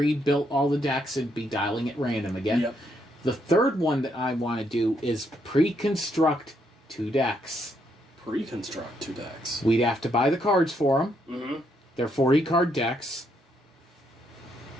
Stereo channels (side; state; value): both; normal; correlation 0.75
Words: all the decks and be dialing at random again. Yep. The third one that I want to do is pre-construct 2 decks. Pre-construct 2 decks. We'd have to buy the cards for them. Mm-hmm. They're 40-card decks.